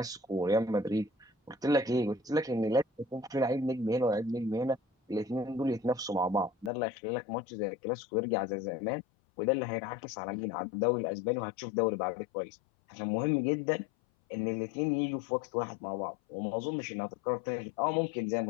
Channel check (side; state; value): right; drops out; at 6.7 s